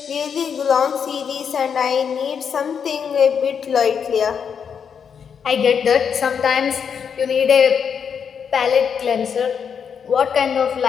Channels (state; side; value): quieter; right; 7.1 dB